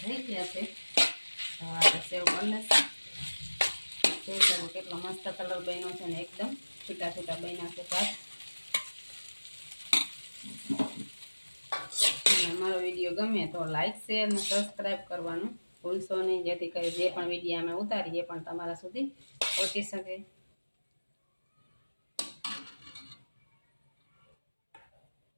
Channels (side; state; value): both; inverted; correlation -1.00